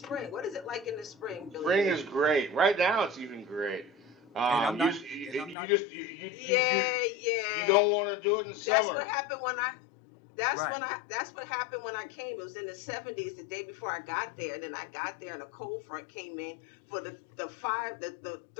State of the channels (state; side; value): drops out; right; at 5.6 s